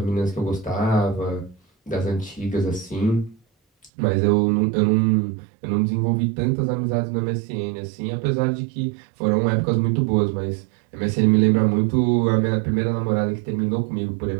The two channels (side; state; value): left; drops out; at 3.9 s